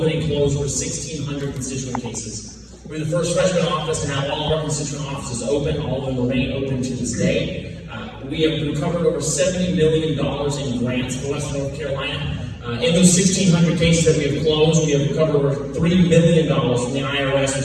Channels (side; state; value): both; identical; correlation 1.00